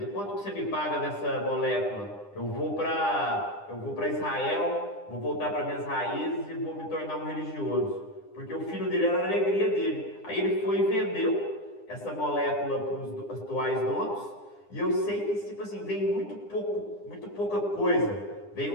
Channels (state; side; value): late; right; 9.9 ms